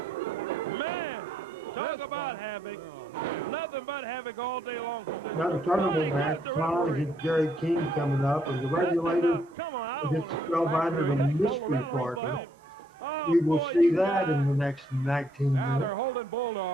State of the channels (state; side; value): normal; both; correlation 0.70